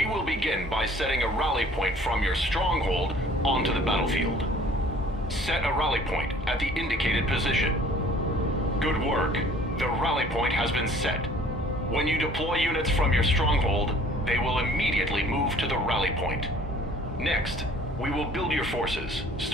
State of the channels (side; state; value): both; normal; correlation 0.53